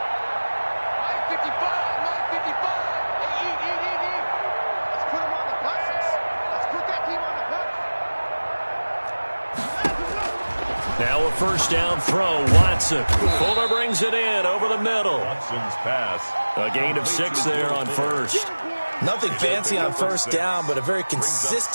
Now a first down throw, Watson. Fuller brings it in over the middle. Watson's pass. A gain of 6 there on first. Nothing fancy on first down, but a very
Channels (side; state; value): both; inverted; correlation -1.00